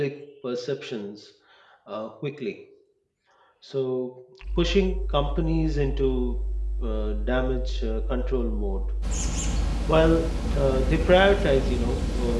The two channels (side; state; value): both; identical; correlation 1.00